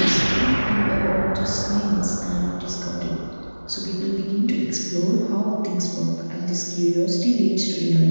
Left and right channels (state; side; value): inverted; both; correlation -1.00